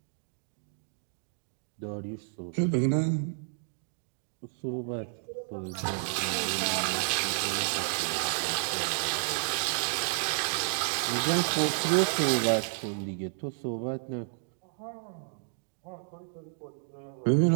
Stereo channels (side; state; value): left; silent; digital silence